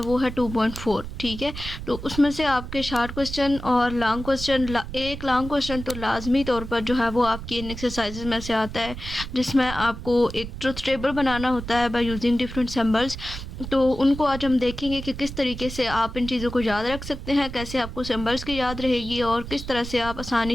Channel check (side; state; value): right; noise; rumble, 10 dB below the sound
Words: है 2.4। ठीक है, तो उसमें से आपके शॉर्ट क्वेश्चन और लॉन्ग क्वेश्चन, एक लॉन्ग क्वेश्चन तो लाजमी तौर पर जो है वो आपकी इन एक्सरसाइजेज में से आता है, जिसमें आपको एक ट्रुथ टेबल बनाना होता है बाय यूजिंग डिफरेंट सिंबल्स। तो उनको आज हम देखेंगे कि किस तरीके से आप इन चीज़ों को याद रख सकते हैं, कैसे आपको सिंबल्स की याद रहेगी और किस तरह से आप